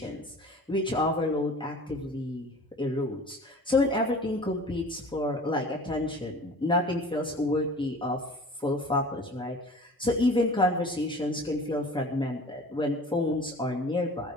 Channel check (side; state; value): both; normal; correlation 0.43